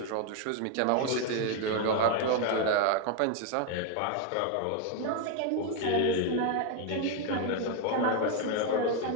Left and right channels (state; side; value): different; both; correlation 0.01